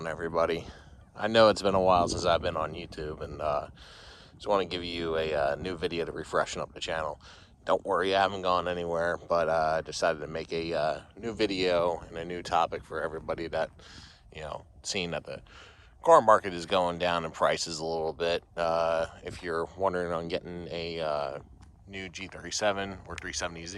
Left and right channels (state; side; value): identical; both; correlation 1.00